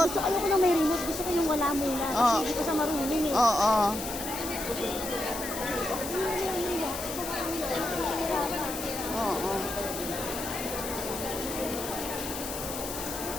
Gusto ayoko na may remote. Gusto ko yung wala muna. Kasi Oh. hindi ko sa marunong eh. Oo. Oo.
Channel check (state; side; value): noise; left; hiss, 7 dB below the sound